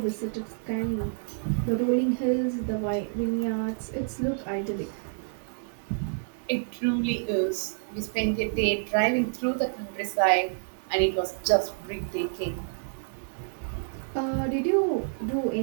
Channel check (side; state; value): left; silent; digital silence